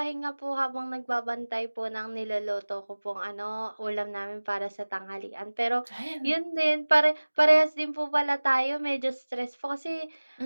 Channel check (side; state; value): both; inverted; correlation -1.00